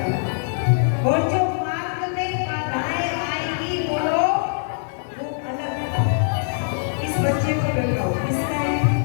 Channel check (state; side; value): silent; right; 64 dB below the other